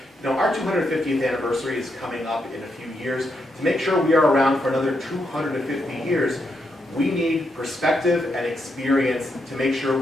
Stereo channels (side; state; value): both; normal; correlation 0.81